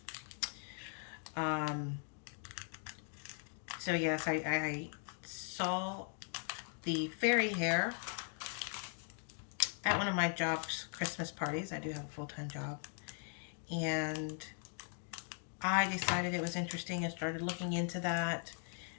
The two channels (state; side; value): silent; right; 51 dB below the other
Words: So yes, I saw the fairy hair at one of my job's Christmas parties. I do have a full-time job. And I decided it was interesting and started looking into that